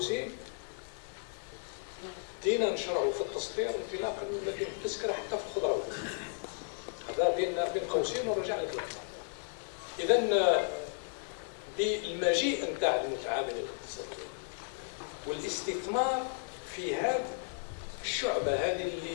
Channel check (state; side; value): silent; right; digital silence